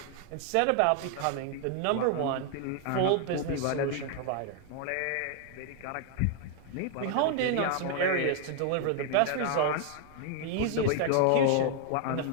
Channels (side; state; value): both; different; correlation 0.00